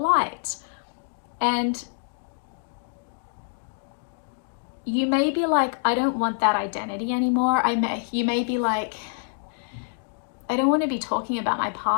And you may be like, I don't want that identity anymore. You may be like, I don't want to be talking about my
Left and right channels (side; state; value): right; silent; digital silence